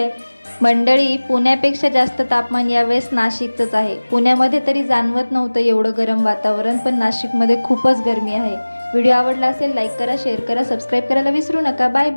मंडळी, पुण्यापेक्षा जास्त तापमान यावेळेस नाशिकचंच आहे. पुण्यामध्ये तरी जाणवत नव्हतं एवढं गरम वातावरण, पण नाशिकमध्ये खूपच गरमी आहे. व्हिडिओ आवडला असेल लाईक करा, शेअर करा, सबस्क्राईब करायला विसरू नका. Bye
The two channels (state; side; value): inverted; both; correlation -1.00